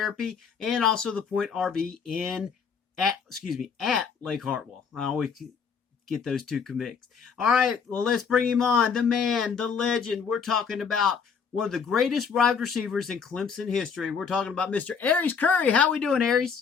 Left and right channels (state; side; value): quieter; right; 6.2 dB